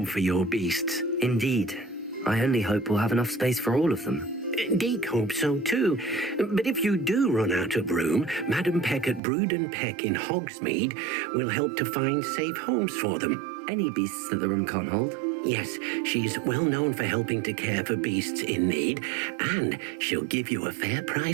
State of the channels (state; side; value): drops out; left; at 9.2 s